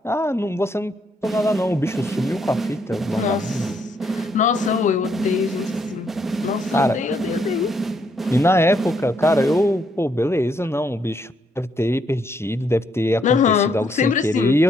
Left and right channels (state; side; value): normal; both; correlation 0.73